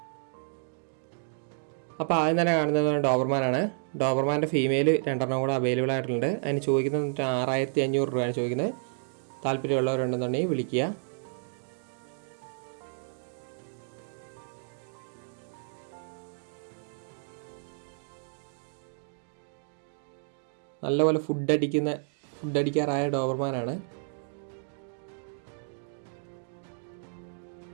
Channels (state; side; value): silent; left; digital silence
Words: അപ്പോൾ ആദ്യം തന്നെ കാണുന്നത് ഡോബർമാനാണ്. ഡോബർമാൻ്റെ ഫീമെയിൽ 2 കൂടെ അവൈലബിൾ ആയിട്ടുണ്ട്. അതിന് ചോദിക്കുന്നത് 6500 രൂപയാണ് ചോദിക്കുന്നത്. താല്പര്യമുള്ളവരുണ്ടെന്നുണ്ടെങ്കിൽ വിളിക്കുക. നല്ലപോലെ ഫുഡ് അടിക്കാറായ ഡോബർമാനാണ്.